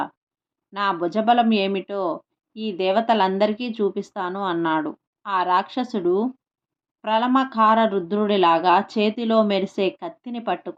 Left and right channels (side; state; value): both; identical; correlation 1.00